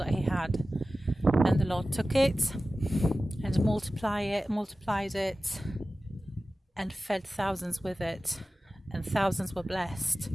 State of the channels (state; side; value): normal; both; correlation 0.96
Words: he had, and the Lord took it and multiplied it and fed thousands with it, and thousands were blessed.